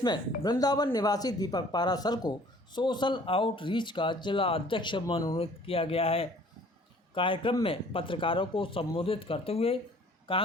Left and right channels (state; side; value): normal; both; correlation 0.54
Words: वृंदावन निवासी दीपक पाराशर को सोशल आउटरीच का जिला अध्यक्ष मनोनीत किया गया है। कार्यक्रम में पत्रकारों को संबोधित करते हुए